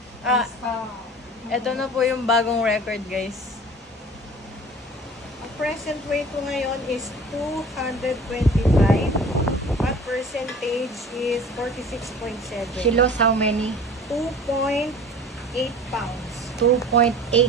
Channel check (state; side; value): normal; both; correlation 0.43